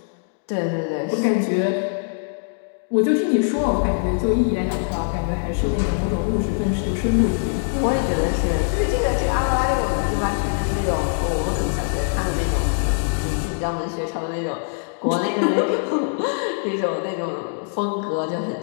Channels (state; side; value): silent; right; digital silence